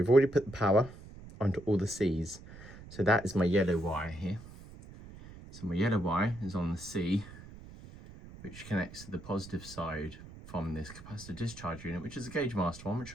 already put the power onto all the C's. So that is my yellow wire here. So my yellow wire is on the C, which connects to the positive side from this capacitor discharge unit, which is a Gauge Master one, which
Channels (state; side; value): noise; right; rumble, 17 dB below the sound